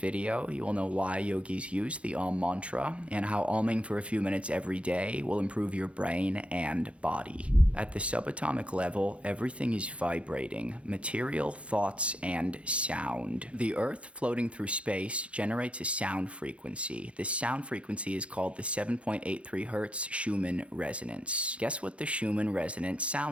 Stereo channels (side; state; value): left; late; 0.061 ms